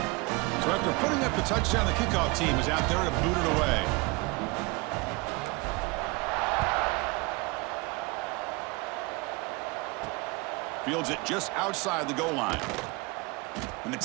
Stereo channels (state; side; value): quieter; left; 26.0 dB